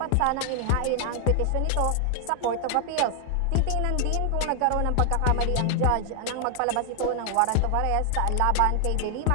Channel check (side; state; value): both; different; correlation 0.00